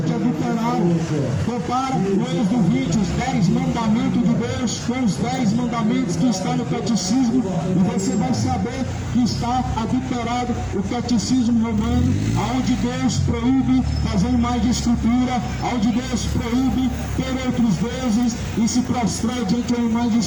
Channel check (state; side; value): identical; both; correlation 1.00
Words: é adulterado. Compara o Êxodo 20, os 10 mandamentos de Deus com os 10 mandamentos que estão no catecismo, e você vai saber que está adulterado o catecismo romano, onde Deus proíbe fazer imagem de escultura, onde Deus proíbe ter outros deuses e se prostrar diante da imagem de